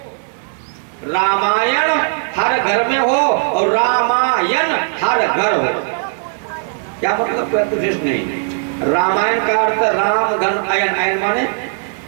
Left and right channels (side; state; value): left; silent; digital silence